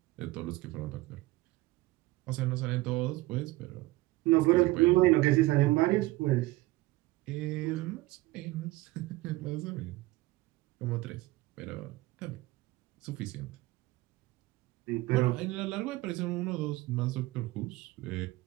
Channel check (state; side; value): quieter; left; 19.4 dB